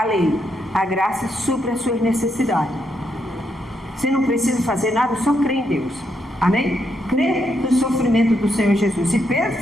lei. A graça supre as suas necessidades. Você não precisa fazer nada, só crê em Deus. Amém? Crê no sofrimento do Senhor Jesus. E Pedro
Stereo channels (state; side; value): normal; both; correlation 0.79